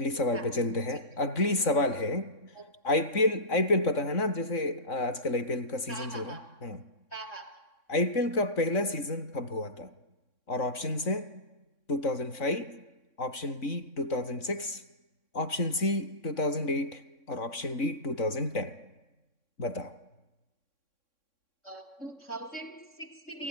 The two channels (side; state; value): right; late; 3.6 ms